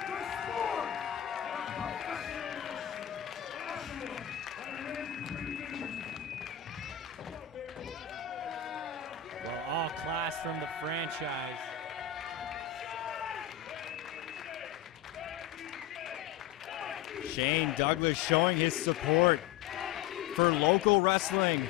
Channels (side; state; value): right; quieter; 10.4 dB